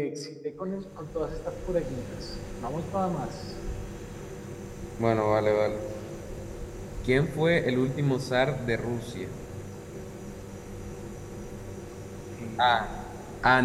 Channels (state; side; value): identical; both; correlation 1.00